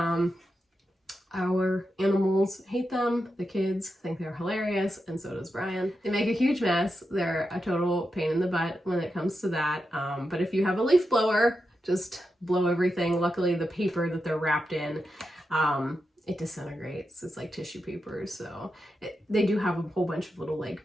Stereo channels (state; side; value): normal; both; correlation 0.88